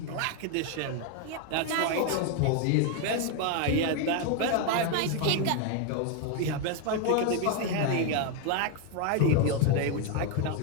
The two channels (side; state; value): both; different; correlation 0.01